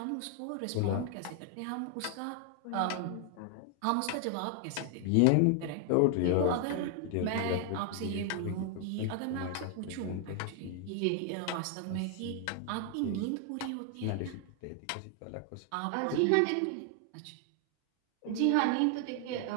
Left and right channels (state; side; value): different; both; correlation 0.00